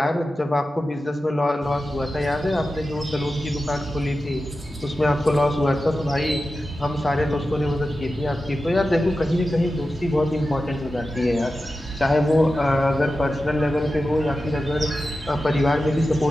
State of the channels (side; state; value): both; normal; correlation 0.92